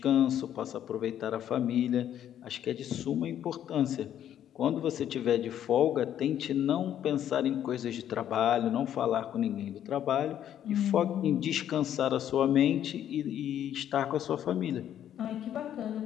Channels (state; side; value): quieter; right; 10.5 dB